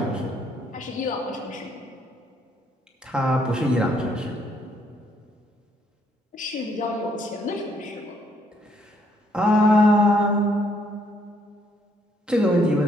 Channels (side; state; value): both; normal; correlation 0.69